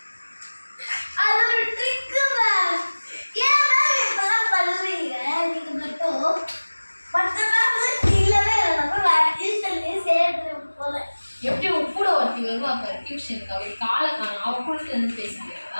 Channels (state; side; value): inverted; both; correlation -1.00